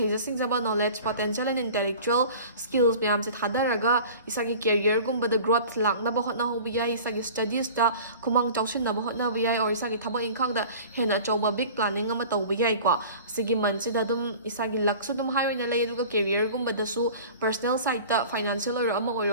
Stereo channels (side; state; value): both; inverted; correlation -0.42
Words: ꯁꯤꯡꯖꯕ knowledge potential and intellectual skills ꯃꯌꯥꯝꯁꯦ ꯊꯥꯗꯔꯒ ꯏꯁꯥꯒꯤ ꯀꯦꯔꯤꯌꯔꯒꯨꯝꯕꯗ ꯒ꯭ꯔꯣꯊ ꯂꯥꯛꯅꯕ ꯍꯣꯠꯅꯍꯧꯕ ꯌꯥꯏ ꯏꯁꯥꯒꯤ ꯁ꯭ꯇꯗꯤꯁꯇ ꯈꯨꯃꯥꯡ ꯆꯥꯎꯁꯤꯟꯅꯕ ꯍꯣꯠꯅꯕ ꯌꯥꯏ ꯑꯣꯔ ꯏꯁꯥꯒꯤ ꯊꯕꯛ ꯏꯪꯈꯥꯡꯗ ꯍꯦꯟꯅ ꯑꯆꯧꯕ ꯕꯤగ్ ꯄ꯭ꯂꯥꯅꯤꯡ ꯑꯃ ꯇꯧꯕ ꯌꯥꯏꯀꯣ ꯁꯤꯒꯤ ꯃꯟꯊꯁꯤꯗ ꯑꯗꯨꯝ ꯏꯁꯥꯒꯤ ꯂꯛꯁꯨ ꯑꯗꯨꯝ ꯍꯥꯏ ꯑꯣꯏꯅ ꯂꯩ ꯑꯗꯨꯒ ꯀꯦꯔꯤꯌꯔꯒꯨꯝꯕꯗꯁꯨ ꯄꯔꯁꯣꯅꯦꯜ ꯁꯥꯏꯠꯇ ꯐꯥꯏꯅꯥꯟꯁꯤꯌꯦꯜ ꯑꯣꯏꯔꯣ ꯑꯃ